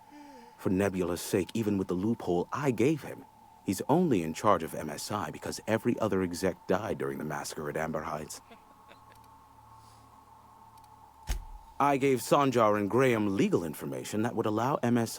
For Nebula's sake, even with the loophole I gave him, he's only in charge of MSI because every other exec died during the massacre at Amber Heights. I gave Sanjar and Graham legal information that would allow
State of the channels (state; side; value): identical; both; correlation 1.00